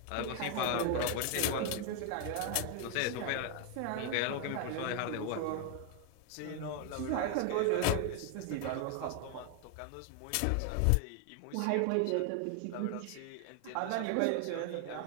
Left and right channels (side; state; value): both; different; correlation 0.00